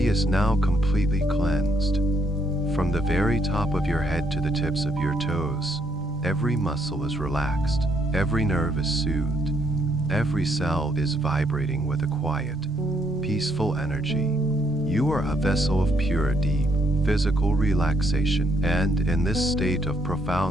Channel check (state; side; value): noise; left; rumble, 15 dB below the sound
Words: is now completely cleansed. From the very top of your head to the tips of your toes, every muscle is relaxed, every nerve is soothed, every cell is vibrating with a quiet, peaceful energy. You are a vessel of pure, deep, physical relaxation, and in this state of